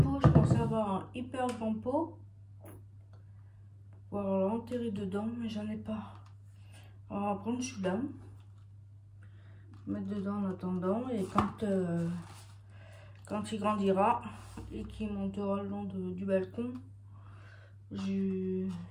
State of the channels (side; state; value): both; identical; correlation 1.00